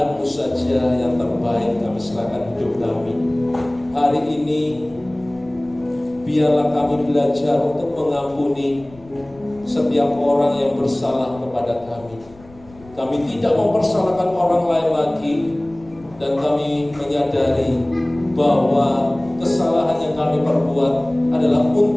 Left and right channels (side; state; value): left; noise; rumble, 24 dB below the sound